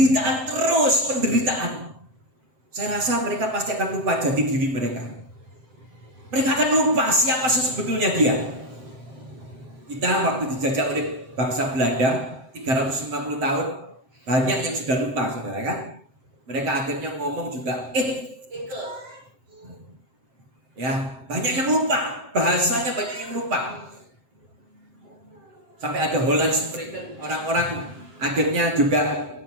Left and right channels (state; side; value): late; left; 7.6 ms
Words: terus penderitaan. Saya rasa mereka pasti akan lupa jati diri mereka. Mereka akan lupa siapa sebetulnya dia. Kita waktu dijajah oleh bangsa Belanda 350 tahun, banyak yang sudah lupa, saudara, kan? Mereka akhirnya ngomong juga ya, banyak yang lupa, bahasanya banyak yang lupa. Sampai ada Holland Spreken, orang-orang akhirnya juga